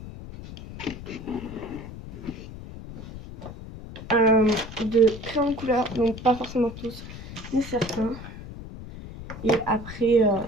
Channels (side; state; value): left; noise; rumble, 12 dB below the sound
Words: de crayons de couleur, donc pas forcément tous, mais certains, et après